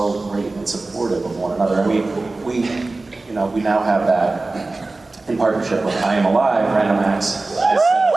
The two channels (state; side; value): quieter; left; 3.3 dB